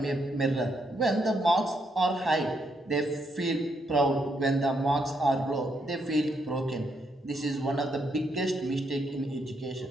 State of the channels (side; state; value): both; normal; correlation 0.77